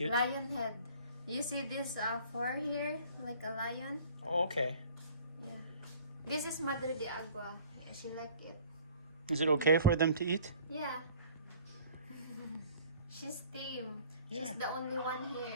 Lion head. You see this fur here, like a lion? Oh, okay. Yeah. This is Madre de Agua. She like it. Is it okay for them to eat? Yeah. She's tame. She's Yeah. the only one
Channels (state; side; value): inverted; both; correlation -0.50